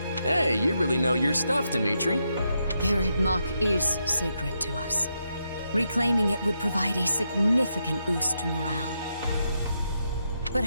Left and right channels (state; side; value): inverted; both; correlation -0.82